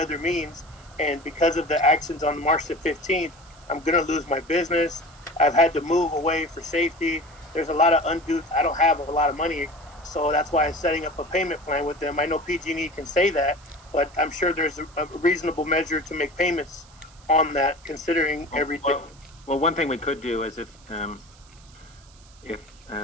means, and because of the actions on March the 15th, I'm gonna lose my business. I've had to move away for safety. There's a lot of undue. I don't have a lot of money, so that's why I'm setting up a payment plan with them. I know PG&E can say that, but I'm sure there's a reasonable measure to make payments on that, considering everything. Well, one thing we could do is if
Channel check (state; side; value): noise; right; hiss, 26 dB below the sound